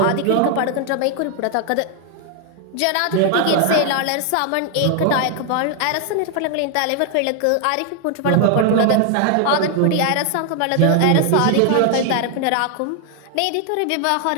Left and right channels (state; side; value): different; both; correlation 0.00